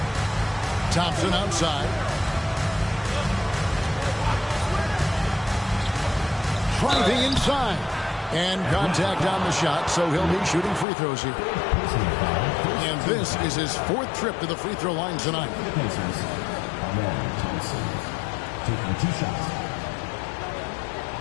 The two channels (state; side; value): drops out; right; at 10.9 s